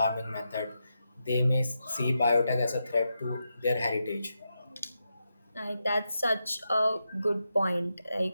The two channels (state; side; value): inverted; both; correlation -0.87